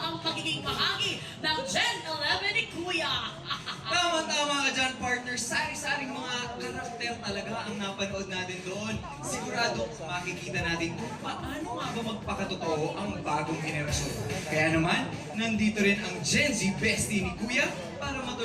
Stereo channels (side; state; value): both; identical; correlation 1.00